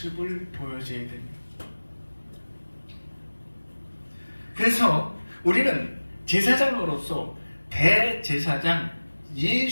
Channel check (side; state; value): both; inverted; correlation -1.00